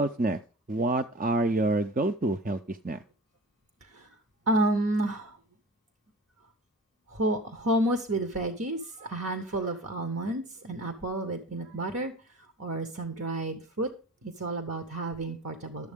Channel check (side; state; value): both; normal; correlation 0.38